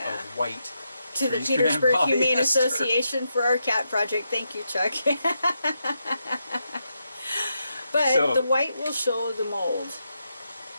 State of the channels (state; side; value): inverted; both; correlation -0.83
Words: white to the Trees can Petersburg end Humane polyester. Association for our cat project. Thank you, Chuck. But So- the white will show the mold.